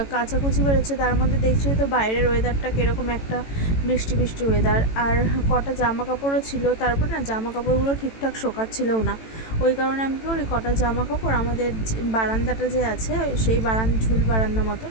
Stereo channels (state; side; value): late; right; 18 ms